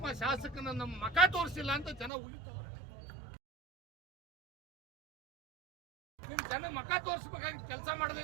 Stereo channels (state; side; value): drops out; left; at 2.1 s